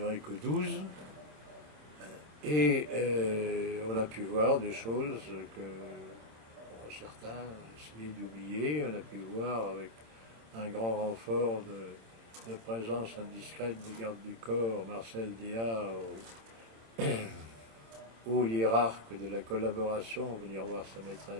que 12. Et on a pu voir des choses que certains essayaient d'oublier. On a pu voir avec un grand renfort de présence indiscrète des gardes du corps, Marcel Déat, haut hiérarque de la collaboration, venir voir sa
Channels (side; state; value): left; late; 26 ms